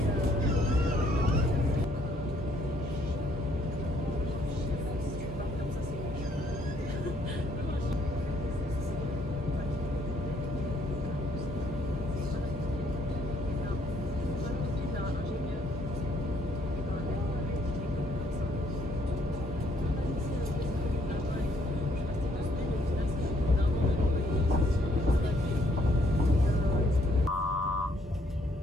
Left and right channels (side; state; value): both; normal; correlation 0.67